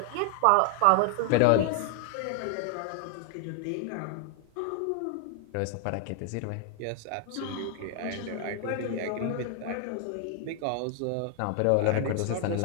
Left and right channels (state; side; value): different; both; correlation 0.00